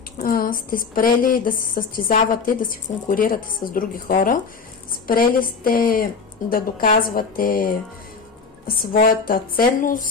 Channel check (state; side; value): quieter; right; 5.0 dB